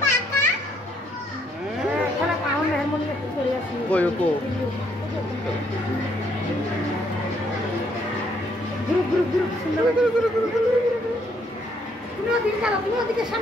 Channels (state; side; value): normal; both; correlation 0.70